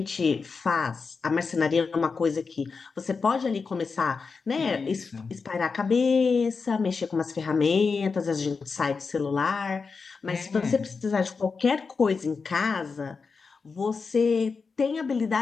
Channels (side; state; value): right; quieter; 4.9 dB